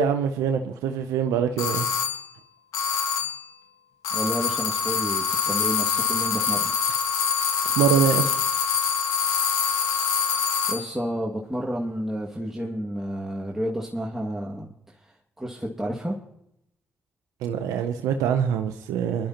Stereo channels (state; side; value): normal; both; correlation 0.33